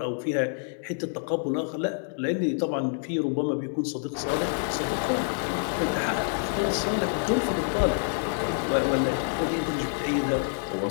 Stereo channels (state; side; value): silent; right; digital silence